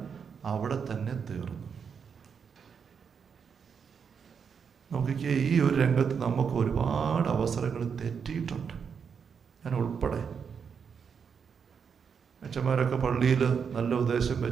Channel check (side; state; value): left; quieter; 6.6 dB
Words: അവിടെ തന്നെ തീർന്നു. നോക്കിക്കേ, ഈ ഒരു രംഗത്ത് നമുക്ക് ഒരുപാട് അവസരങ്ങൾ തെറ്റിയിട്ടുണ്ട്, ഞാൻ ഉൾപ്പെടെ. അച്ഛന്മാരൊക്കെ പള്ളിയിൽ നല്ല ഉദ്ദേശം